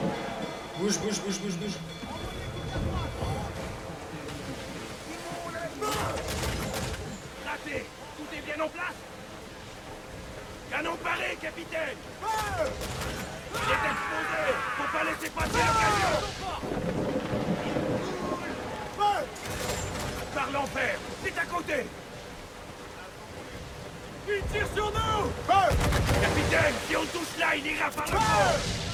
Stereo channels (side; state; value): both; identical; correlation 1.00